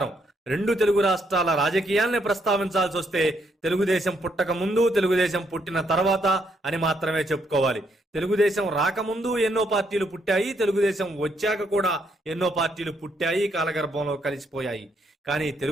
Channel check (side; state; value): both; normal; correlation 0.74